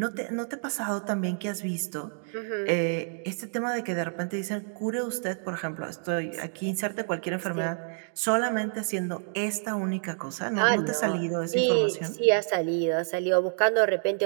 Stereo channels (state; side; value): silent; left; 59 dB below the other